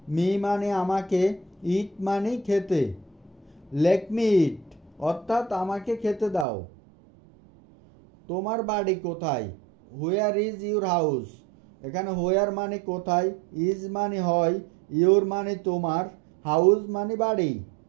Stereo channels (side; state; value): left; drops out; at 6.5 s